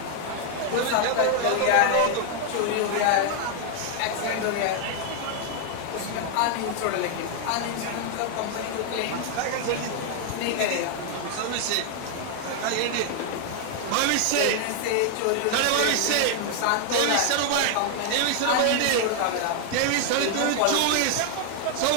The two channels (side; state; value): both; different; correlation 0.00